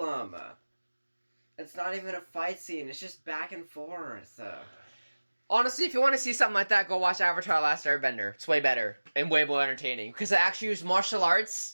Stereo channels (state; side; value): inverted; both; correlation -1.00